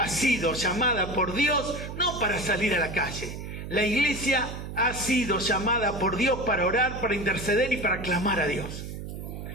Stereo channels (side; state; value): right; noise; hum, 8 dB below the sound